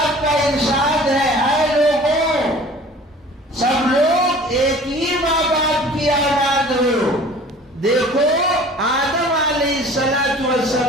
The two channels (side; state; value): both; normal; correlation 0.46